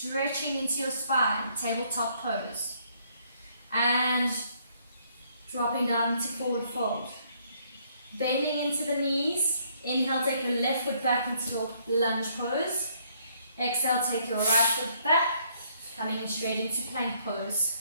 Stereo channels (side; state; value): both; inverted; correlation -0.67